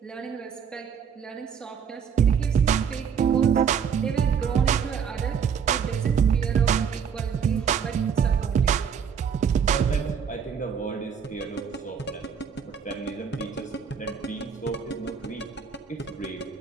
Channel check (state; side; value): quieter; left; 7.1 dB